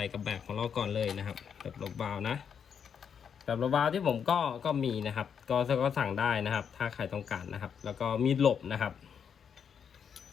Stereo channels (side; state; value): right; quieter; 7.4 dB